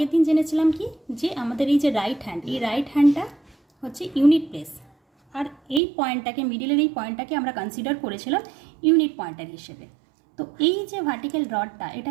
দিন জেনেছিলাম কি, যে আমাদের এই যে রাইট হ্যান্ড, এই রাইট হ্যান্ডটা হচ্ছে ইউনিট প্লেস, আর এই পয়েন্টটাকে, মিডিলের এই পয়েন্টটাকে আমরা কনসিডার করেছিলাম ইউনিট পয়েন্টার হিসেবে। তো এই যে ভার্টিক্যাল রডটা,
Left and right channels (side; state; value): left; drops out; at 5.8 s